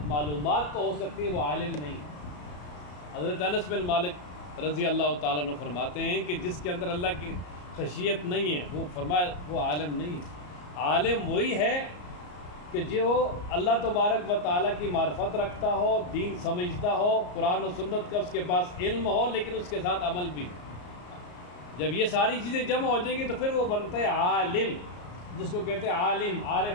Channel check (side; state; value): right; late; 34 ms